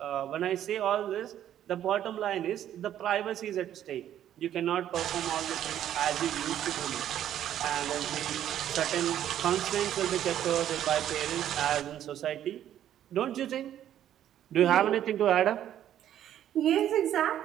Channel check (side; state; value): left; quieter; 11.1 dB